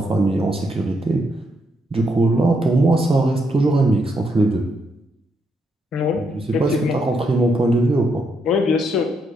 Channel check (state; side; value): normal; both; correlation 0.77